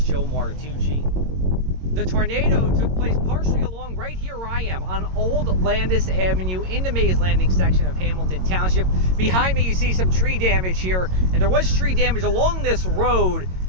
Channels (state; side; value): late; left; 22 ms